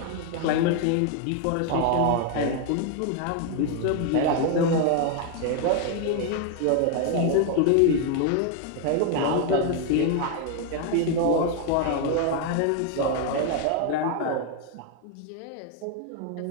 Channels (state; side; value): different; both; correlation 0.01